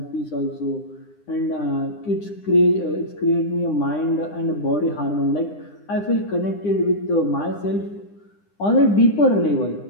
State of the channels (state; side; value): late; right; 9.9 ms